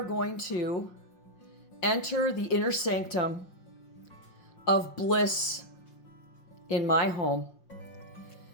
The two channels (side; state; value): right; late; 5.6 ms